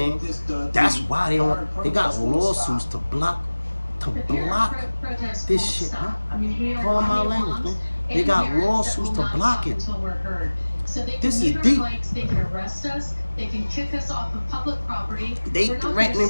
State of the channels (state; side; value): inverted; both; correlation -1.00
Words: That's why they got lawsuits to block this shit, huh? Call my language, man. They got lawsuits to block it. So they This can is mute deep. our bikes, they can arrest us, they can kick us off of public property. They We're not gonna threatening